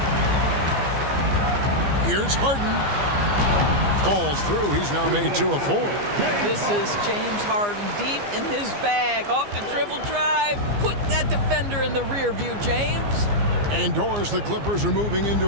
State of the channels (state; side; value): late; left; 15 ms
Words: Here's Harden. Falls through. He's now made 2 of 4. This is James Harden deep in his bag. Off the dribble drive. Put that defender in the rear view, James. And Doris, the Clippers are moving